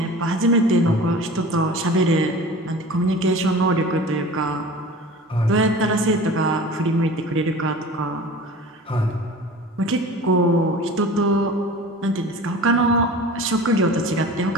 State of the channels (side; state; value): both; normal; correlation 0.39